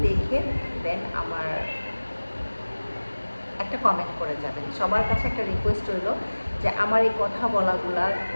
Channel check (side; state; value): both; inverted; correlation -1.00